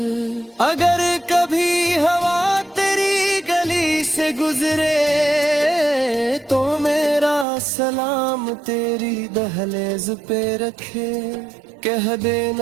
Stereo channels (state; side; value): drops out; left; at 7.5 s